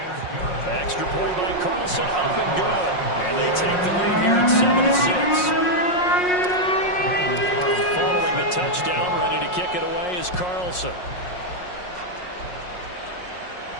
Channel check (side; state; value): right; late; 5.5 ms